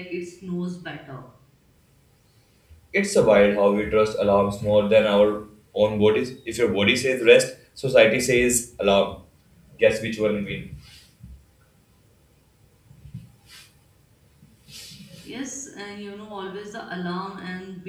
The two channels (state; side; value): identical; both; correlation 1.00